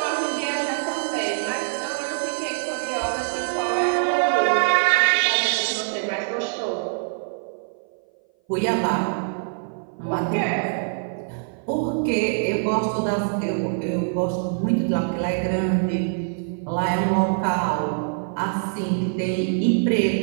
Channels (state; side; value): silent; left; 57 dB below the other